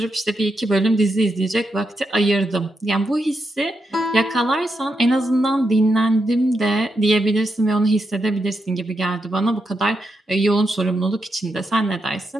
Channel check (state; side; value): normal; both; correlation 0.84